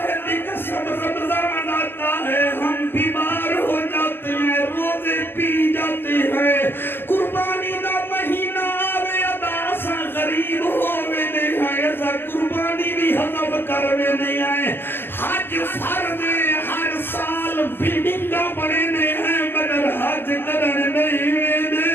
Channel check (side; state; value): right; late; 0.10 ms